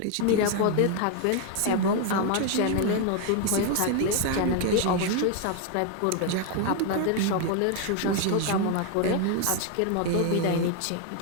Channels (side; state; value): both; different; correlation 0.01